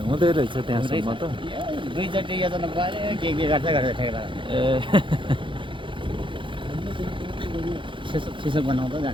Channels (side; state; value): left; late; 0.24 ms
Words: हुँदै रहेछ त्यहाँसम्म त दुईचोटि योजना पऱ्यो के गर्छ ठेकेर ए सिसो बनाउँदा